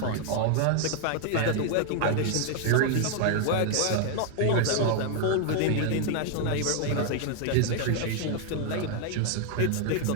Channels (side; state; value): both; different; correlation 0.00